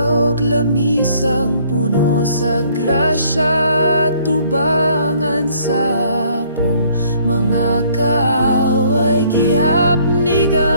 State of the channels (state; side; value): inverted; both; correlation -0.62